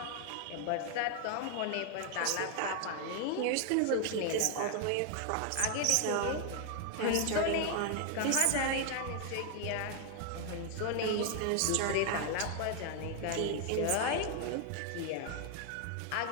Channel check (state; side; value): different; both; correlation 0.00